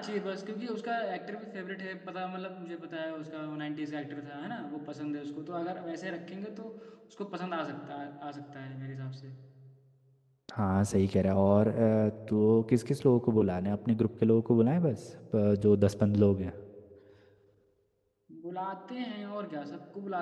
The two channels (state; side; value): identical; both; correlation 1.00